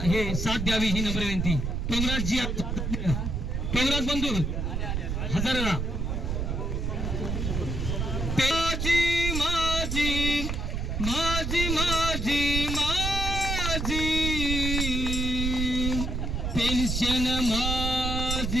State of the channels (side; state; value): right; noise; rumble, 1 dB below the sound